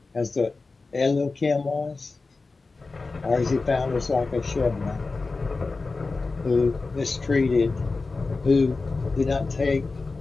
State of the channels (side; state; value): right; quieter; 3.8 dB